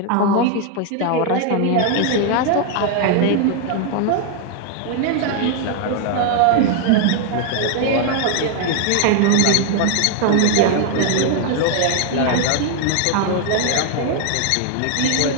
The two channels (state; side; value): different; both; correlation 0.00